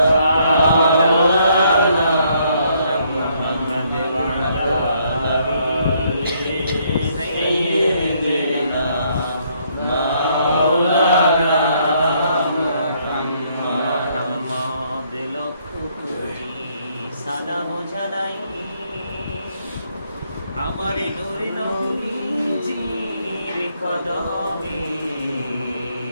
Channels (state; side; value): inverted; both; correlation -0.70